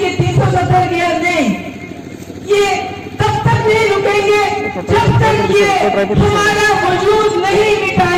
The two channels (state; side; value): identical; both; correlation 1.00